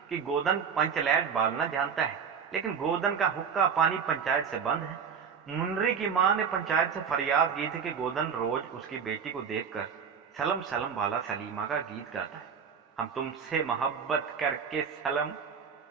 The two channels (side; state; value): left; quieter; 6.7 dB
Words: कि गोदन पंचलैट बालना जानता है, लेकिन गोदन का हुक्का पानी पंचायत से बंद है। मुंडरी की मां ने पंचायत से फरियाद की थी कि गोदन रोज उसकी बेटी को देखकर सलम सलम वाला सलीमा का गीत गाता है, हम तुमसे मोहब्बत करके सलम।